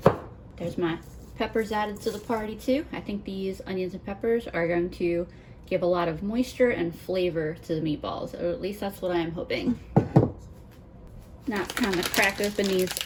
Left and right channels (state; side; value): identical; both; correlation 1.00